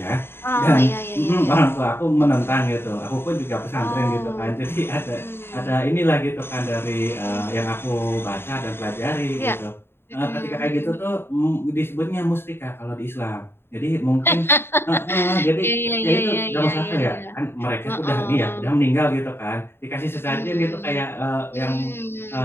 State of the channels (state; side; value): late; right; 0.11 ms